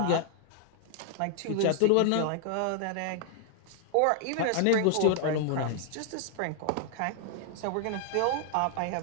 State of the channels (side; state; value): both; different; correlation -0.01